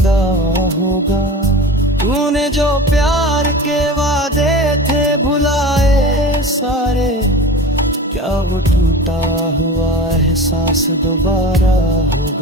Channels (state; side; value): normal; both; correlation 0.34